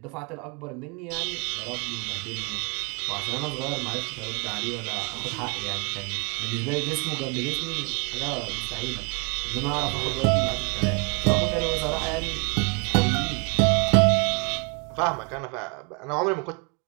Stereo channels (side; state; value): left; quieter; 33.1 dB